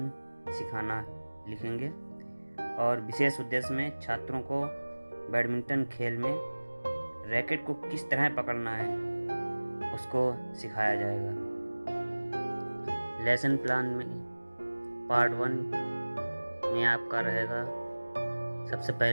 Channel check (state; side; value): inverted; both; correlation -1.00